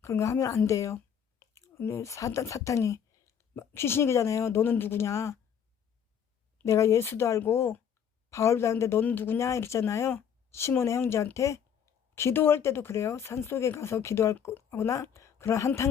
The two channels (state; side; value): quieter; right; 8.1 dB